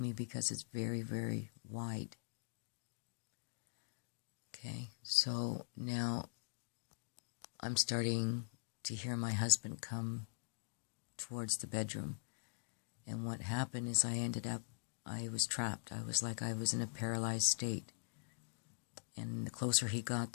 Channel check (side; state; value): right; silent; digital silence